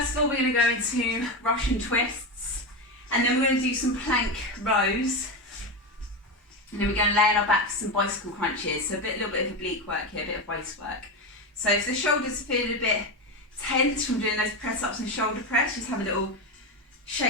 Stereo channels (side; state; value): both; normal; correlation 0.16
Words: of all, we're going to go into Russian twists, and then we're going to do some plank rows, and then we're going to lay on our back for some bicycle crunches. So a little bit of oblique work here, a bit of waist work. So if the shoulders are feeling a bit tense from doing those press ups and shoulder press, just have a little